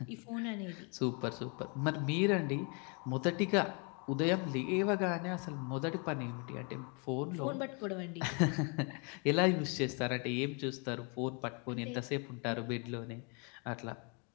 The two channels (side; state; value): right; quieter; 34.7 dB